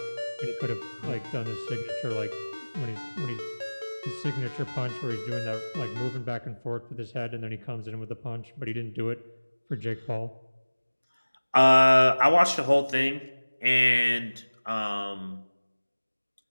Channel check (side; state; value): both; inverted; correlation -1.00